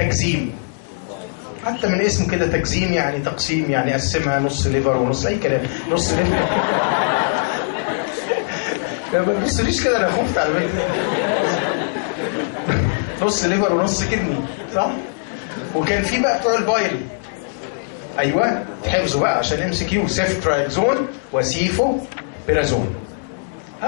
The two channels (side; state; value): right; silent; digital silence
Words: حتى من اسمه كده تكزيم يعني تقسيم، يعني قسمها نص ليفر ونص اي كلام، نص ليفر ما تبصليش كده انا خفت على فكره نص ليفر ونص كدني صح؟ وكان في بقى بتوع البايل، ايوه حفظوا بقى عشان ام سي كيو، سيفترايزون وسيفو بيرازون.